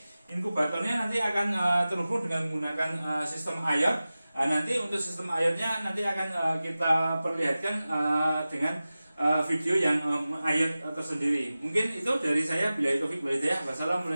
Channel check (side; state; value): both; inverted; correlation -0.96